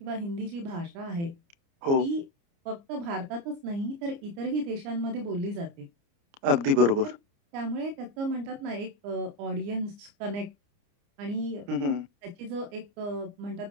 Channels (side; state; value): left; late; 29 ms